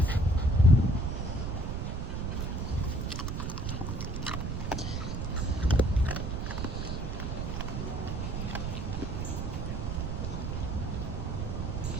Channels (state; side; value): noise; right; rumble, 2 dB below the sound